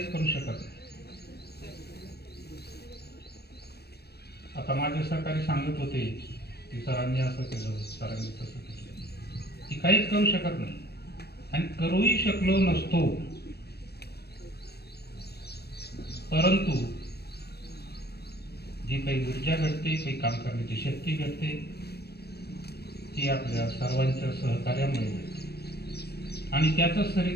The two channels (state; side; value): late; right; 0.47 ms